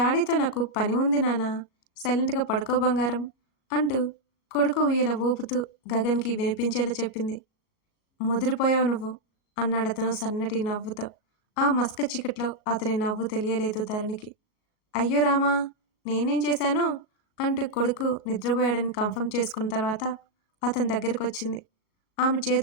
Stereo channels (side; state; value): right; late; 37 ms